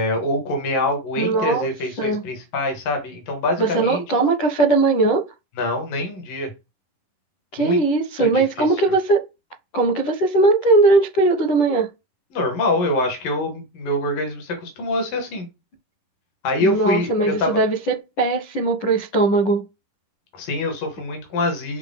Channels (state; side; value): late; right; 10 ms